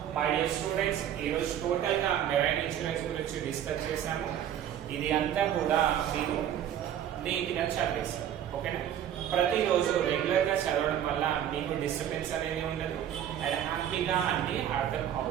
మై డియర్ స్టూడెంట్స్, ఈరోజు టోటల్ గా మెరైన్ ఇన్సూరెన్స్ గురించి డిస్కస్ చేశాము. ఇది అంతా కూడా మీరు నీట్ గా చదివేస్తారు, ఓకేనా. ప్రతిరోజు రెగ్యులర్ గా చదవడం వల్ల మీకు డిస్టర్బెన్స్ అనేది ఉండదు అండ్ హ్యాపీగా అన్ని అర్థం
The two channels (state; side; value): quieter; left; 10.3 dB